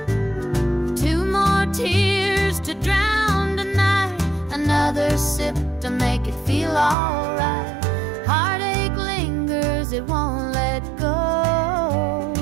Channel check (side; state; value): left; drops out; at 7.0 s